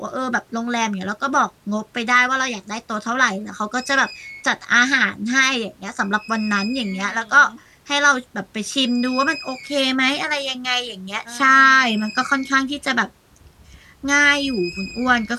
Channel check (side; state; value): both; identical; correlation 1.00